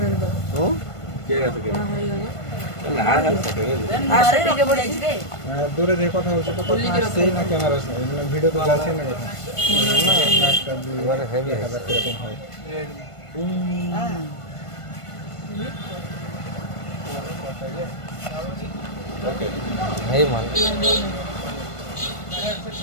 দূরে যে কথা হচ্ছে তো কথা আসছেই না, ক্যামেরা ভিডিও তো যাচ্ছে না কথা। এবারে হেভি কিরকম হয় এই মাল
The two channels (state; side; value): late; right; 1.5 ms